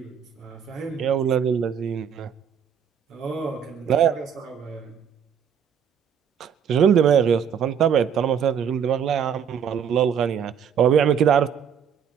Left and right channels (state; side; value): quieter; left; 7.8 dB